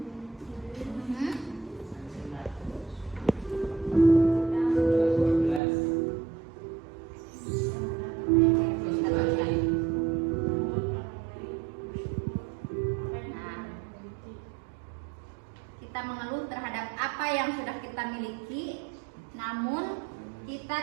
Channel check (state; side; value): drops out; left; at 5.6 s